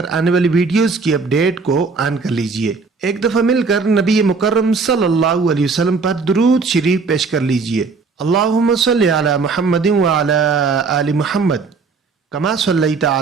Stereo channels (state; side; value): quieter; left; 4.6 dB